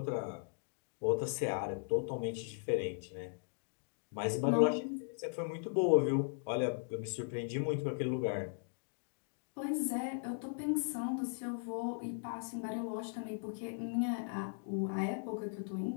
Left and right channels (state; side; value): silent; right; digital silence